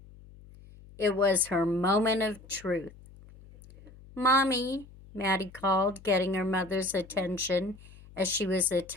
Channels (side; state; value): left; noise; hum, 21 dB below the sound